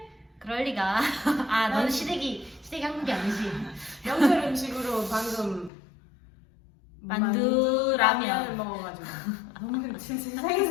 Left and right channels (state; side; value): drops out; right; at 5.7 s